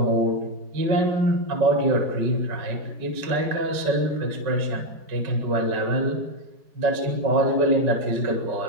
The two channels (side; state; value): left; late; 5.3 ms